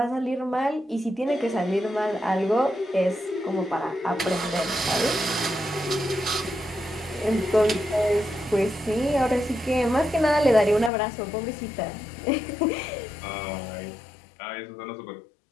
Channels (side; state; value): right; drops out; at 10.9 s